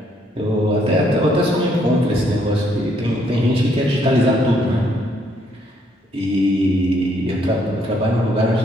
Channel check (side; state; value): both; normal; correlation 0.69